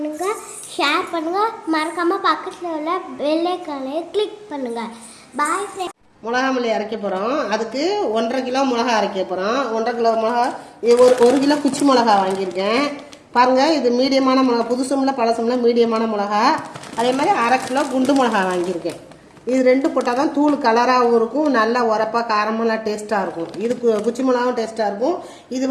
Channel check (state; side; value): identical; both; correlation 1.00